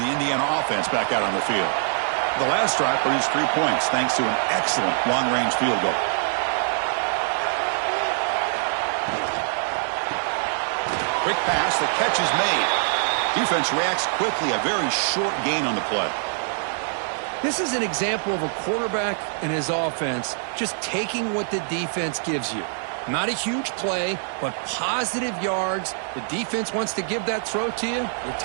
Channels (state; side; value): silent; left; 62 dB below the other